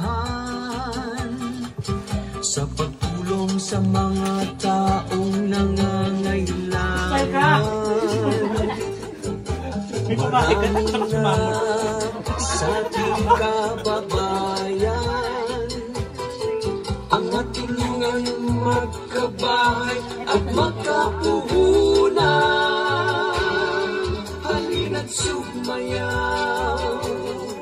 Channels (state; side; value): identical; both; correlation 1.00